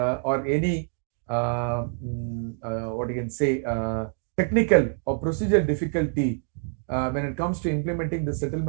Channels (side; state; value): left; silent; 59 dB below the other